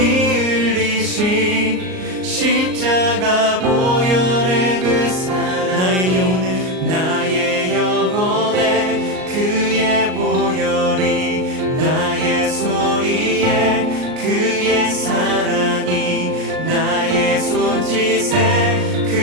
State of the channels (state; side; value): late; left; 38 ms